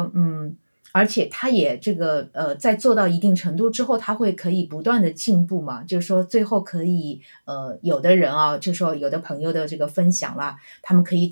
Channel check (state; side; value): inverted; both; correlation -1.00